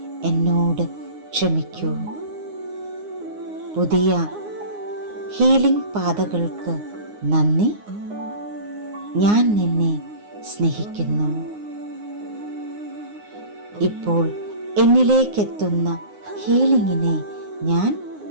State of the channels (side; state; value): left; late; 9.6 ms